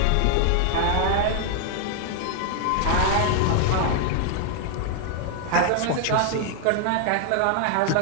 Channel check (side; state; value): both; different; correlation 0.00